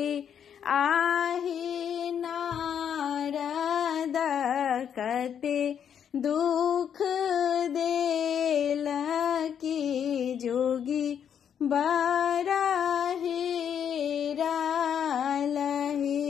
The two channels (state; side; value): quieter; right; 8.4 dB